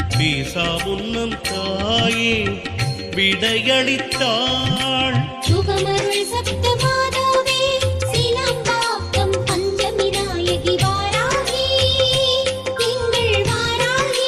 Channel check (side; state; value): both; identical; correlation 1.00